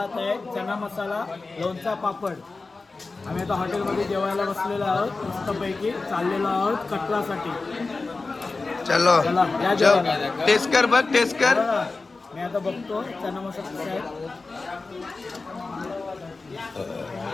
आहे, चना मसाला, लोणचा, पापड. आम्ही आता हॉटेलमध्ये जेवायला बसलेलो आहोत. मस्तपैकी चाललेलो आहोत कटरासाठी. चलो चला, या जेवायला. टेस्ट कर बघ, टेस्ट कर. बघा, मी आता बघतो चना मसाला कसा आहे.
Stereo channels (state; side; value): quieter; right; 3.8 dB